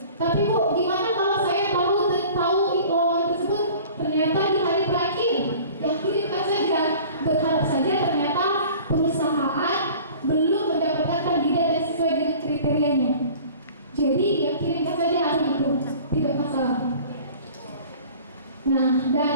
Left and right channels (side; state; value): both; inverted; correlation -0.45